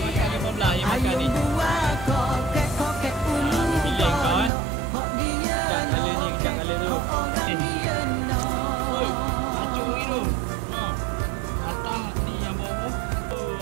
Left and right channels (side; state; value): left; drops out; at 4.5 s